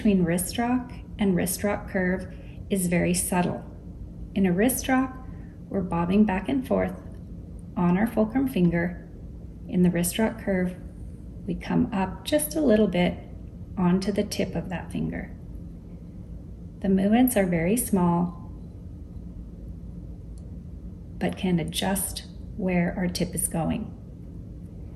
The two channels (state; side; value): identical; both; correlation 1.00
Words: wrist rock and wrist rock curve is very subtle. In a wrist rock, we're bobbing back and forth on our fulcrum finger. In the wrist rock curve, we come up just a little bit onto the tip of that finger. The movements are very small, but can adjust where our tip is going.